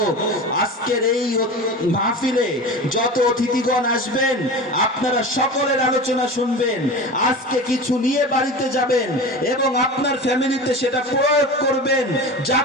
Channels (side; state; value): both; normal; correlation 0.31